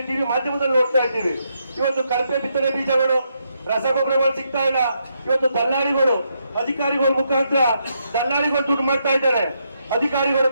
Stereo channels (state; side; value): inverted; both; correlation -0.79